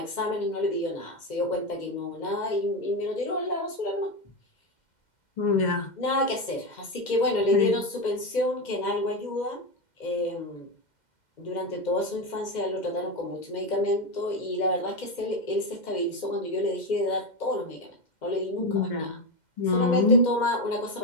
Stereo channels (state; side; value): late; right; 2.1 ms